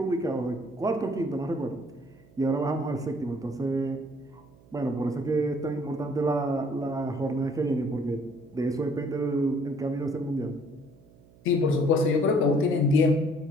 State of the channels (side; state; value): right; noise; hum, 26 dB below the sound